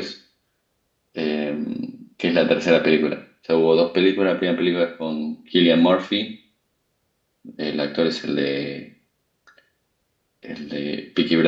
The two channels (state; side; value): identical; both; correlation 1.00